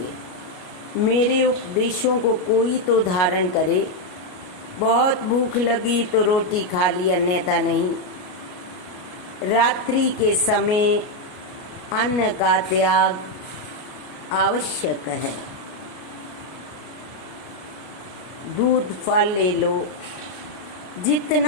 मेरे उपदेशों को कोई तो धारण करे। बहुत भूख लगी तो रोटी खा ली, अन्यथा नहीं। रात्रि के समय अन्न का त्याग आवश्यक है। दूध फल ले लो।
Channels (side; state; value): right; late; 33 ms